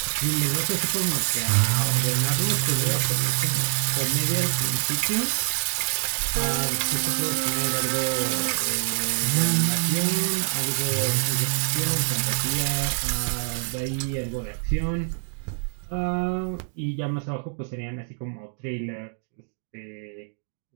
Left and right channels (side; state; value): left; silent; digital silence